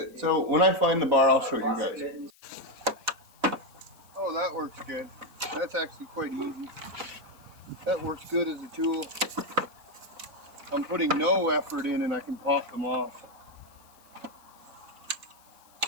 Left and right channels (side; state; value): left; noise; hiss, 28 dB below the sound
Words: So when I find the bar, I'll show you guys. Oh, that works good. That's actually quite easy. That works good as a tool. I'm putting no effort in and I can pop them off.